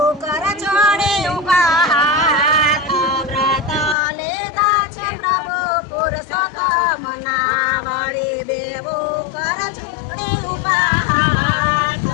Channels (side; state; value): right; drops out; at 4.0 s